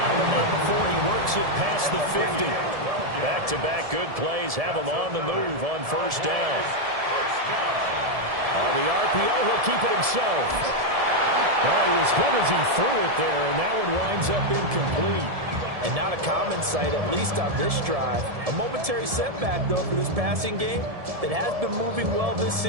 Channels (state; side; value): late; left; 1.7 ms